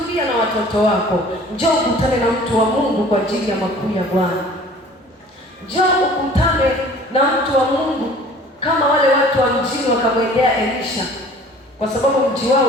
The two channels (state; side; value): normal; both; correlation 0.48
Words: na watoto wako. Njoo ukutane na mtu wa Mungu kwa ajili ya makuu ya Bwana. Njoo ukutane na mtu wa Mungu kama wale watu wa mjini wakamwendea Elisha, kwa sababu mji wao